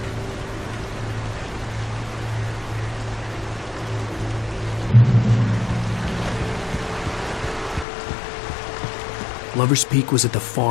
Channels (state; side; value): drops out; right; at 7.9 s